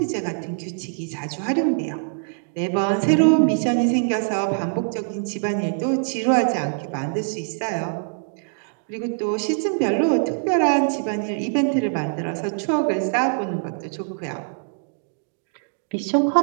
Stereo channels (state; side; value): silent; left; digital silence